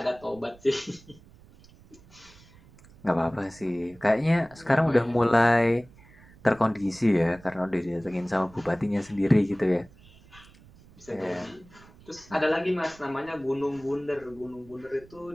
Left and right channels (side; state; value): right; noise; rumble, 24 dB below the sound